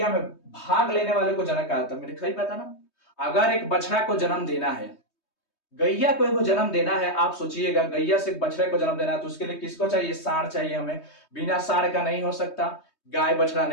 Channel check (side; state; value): right; late; 3.2 ms